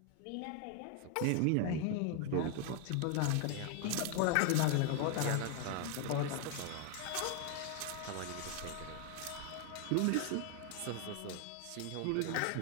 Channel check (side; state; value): both; different; correlation 0.00